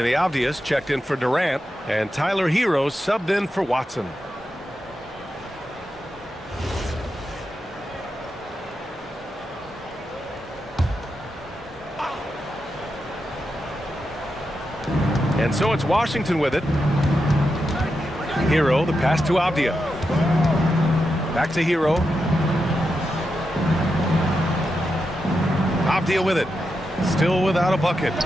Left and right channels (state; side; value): normal; both; correlation 0.87